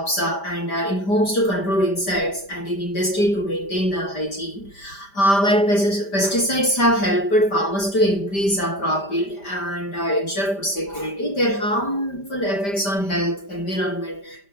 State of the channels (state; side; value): late; right; 5.0 ms